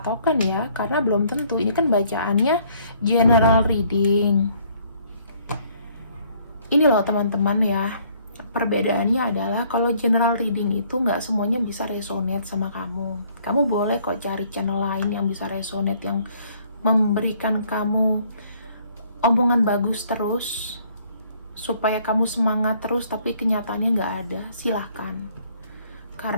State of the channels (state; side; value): inverted; both; correlation -0.62